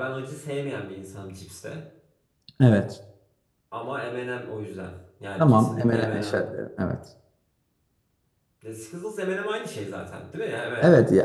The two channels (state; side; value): identical; both; correlation 1.00